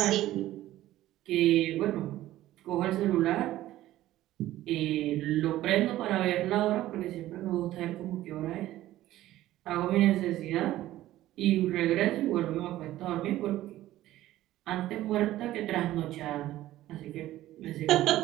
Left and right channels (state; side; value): quieter; left; 14.8 dB